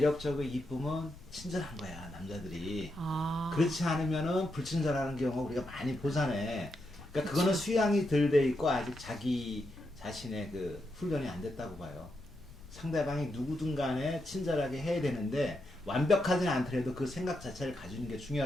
이쁘면 친절한 거야, 남자들이. 그렇지 않으면은 불친절하는 경우 우리가 많이 보잖아. 그러니까 그거는 수양이 덜 돼 있고 아직 자기 자신의 그 훈련이 안 됐다고 봐요. 상대방이 누구든 간에 친절하게 해야 되는데 완벽하지는 않더라도 그 생각 자체를 가지는 게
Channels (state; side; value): noise; left; rumble, 18 dB below the sound